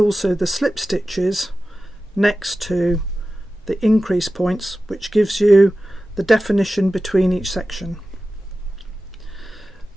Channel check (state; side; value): normal; both; correlation 0.94